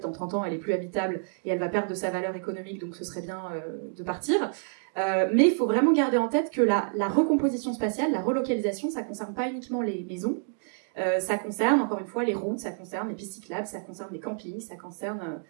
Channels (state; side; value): silent; left; digital silence